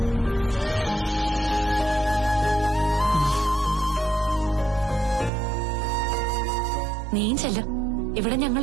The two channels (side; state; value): left; drops out; at 5.3 s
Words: നീയും ചെല്ല, ഇവിടെ